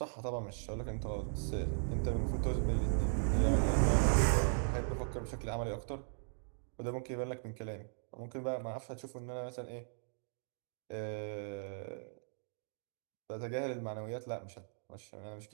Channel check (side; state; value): left; silent; digital silence